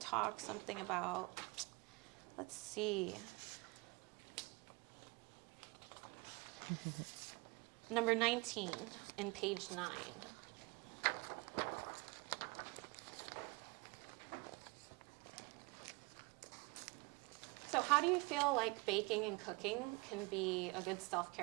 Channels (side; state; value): left; quieter; 26.7 dB